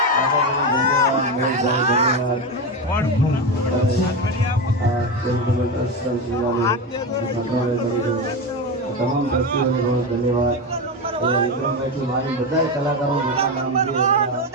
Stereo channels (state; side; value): normal; both; correlation 0.16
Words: તમામ દ્રષ્ટિઓને બહુ ધન્યવાદ. વિક્રમભાઈથી મારી બધા કલાકારો મોટા નામ છે.